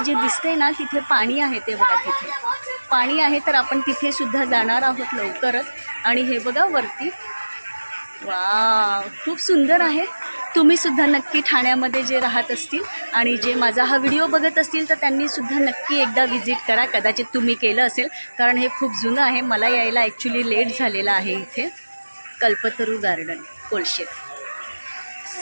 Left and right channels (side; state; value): both; inverted; correlation -1.00